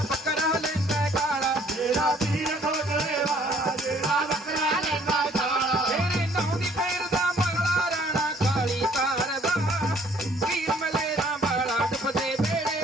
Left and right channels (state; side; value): normal; both; correlation 0.60